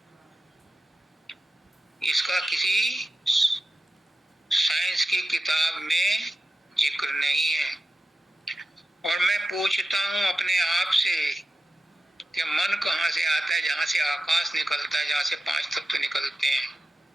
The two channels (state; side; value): normal; both; correlation 0.92